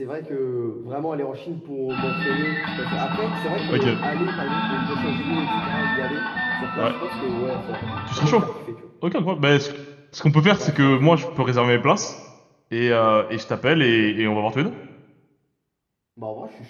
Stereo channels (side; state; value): both; identical; correlation 1.00